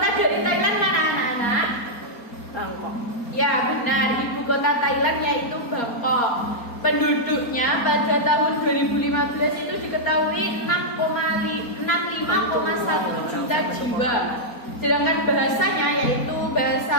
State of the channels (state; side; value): late; right; 4.3 ms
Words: dari Thailand mana anak-anak? Bangkok. Ya benar, ibu kota Thailand yaitu Bangkok. Penduduknya pada tahun 2015 itu diketahui 65,1 juta jiwa. Sedangkan bahasanya yaitu